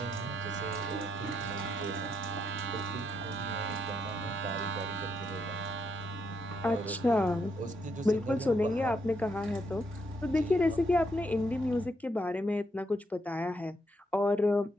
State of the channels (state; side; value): normal; both; correlation 0.76